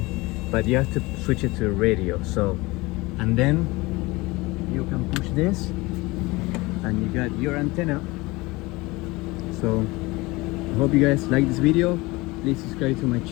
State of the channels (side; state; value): right; quieter; 22.5 dB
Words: but you have to switch it to radio. So, and then you can push this and you got your antenna. So I hope you guys like this video. Please subscribe to my